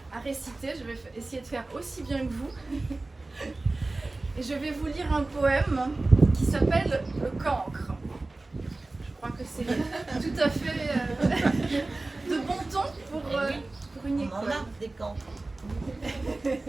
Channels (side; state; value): left; quieter; 3.1 dB